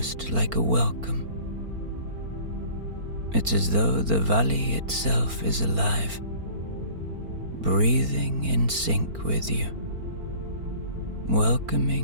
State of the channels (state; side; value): late; left; 4.4 ms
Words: like a welcome. It's as though the valley itself is alive, breathing in sync with you,